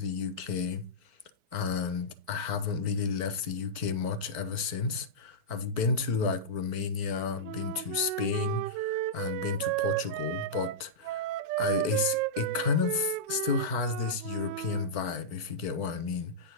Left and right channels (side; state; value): left; late; 4.5 ms